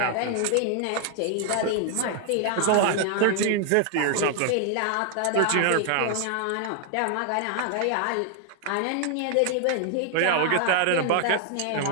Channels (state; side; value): different; both; correlation 0.00